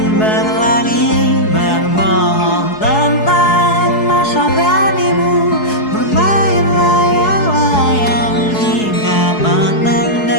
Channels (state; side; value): late; right; 4.7 ms